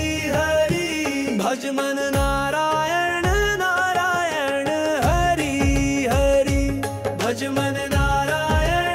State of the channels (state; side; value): identical; both; correlation 1.00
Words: हरि भज मन नारायण नारायण हरि हरि भज मन